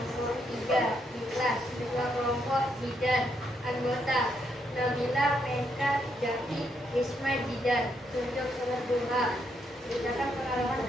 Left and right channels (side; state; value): both; normal; correlation 0.77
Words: 3 ikhlas. Ketua kelompok Jidan. Anggota Nabila, Meka, Jaki, Isma, Jidan. Tunjuk sholat duha. Ceritakan pengalaman